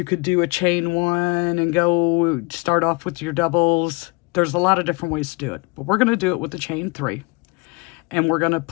could do a chain one and go start off with your doubles. There's a lot of different ways to do it, but we're going to do it with the chain 3. And we're going to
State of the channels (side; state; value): right; quieter; 28.8 dB